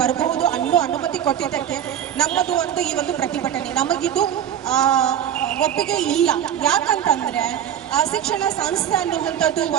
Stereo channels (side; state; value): left; quieter; 10.0 dB